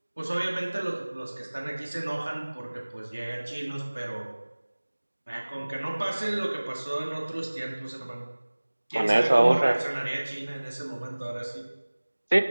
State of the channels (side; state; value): both; inverted; correlation -1.00